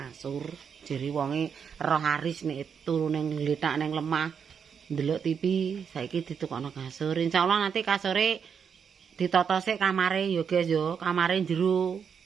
Jere wonge roh haris nek turu ning ngletak ning lemah ndelok TV saiki ditukokno kasur. Insyaallah nanti kasure ditata sik kamare ya, guys ya. Kamare jero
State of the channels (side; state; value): left; quieter; 6.9 dB